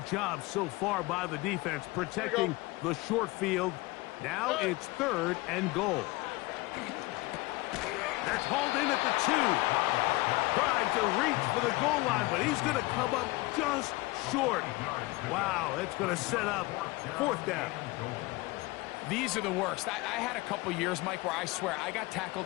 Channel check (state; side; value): quieter; right; 21.8 dB